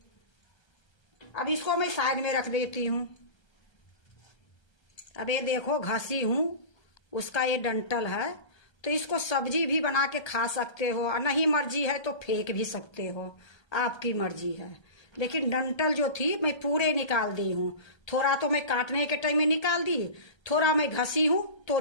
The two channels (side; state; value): right; late; 1.3 ms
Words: अब इसको मैं साइड में रख देती हूँ। अब ये देखो घसी हूँ, उसका ये डंठल है, तो इसको सब्जी भी बना के खा सकते हो, और नहीं मर्जी है तो फेंक भी सकते हो, आपकी मर्जी है। लेकिन डंठल जो थी मैं पूरे निकाल दी हूँ। थोड़ा तो मैं काटने के टाइम में निकाल दी, थोड़ा मैं घसी हूँ तो